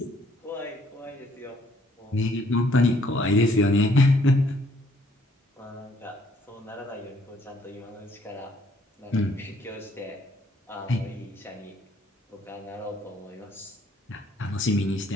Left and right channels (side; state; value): both; normal; correlation 0.64